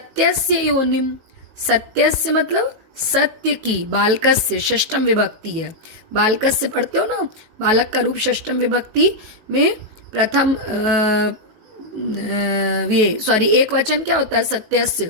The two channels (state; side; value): late; left; 18 ms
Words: योनिम, सत्यस्य मतलब सत्य की, बालकस्य षष्टम विभक्ति है। बालकस्य पढ़ते हो ना, बालक का रूप षष्टम विभक्ति में प्रथम ये सॉरी एक वचन क्या होता है?